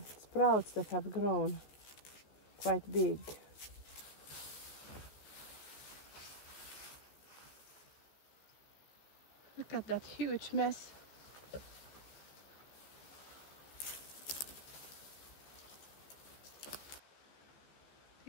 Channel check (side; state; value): right; late; 14 ms